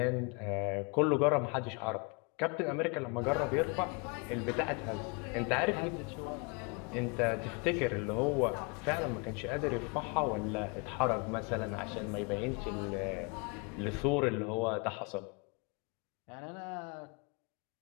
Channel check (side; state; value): right; quieter; 31.9 dB